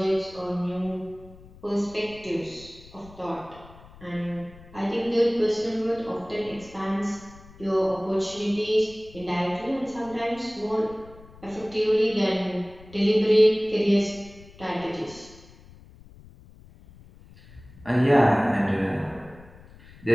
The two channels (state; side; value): noise; left; rumble, 22 dB below the sound